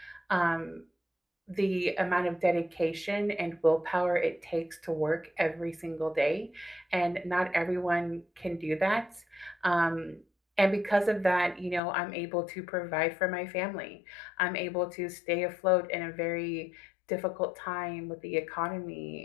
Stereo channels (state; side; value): drops out; right; at 11.8 s